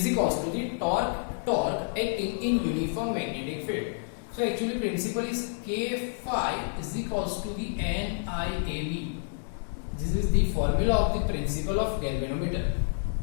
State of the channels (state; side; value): silent; right; digital silence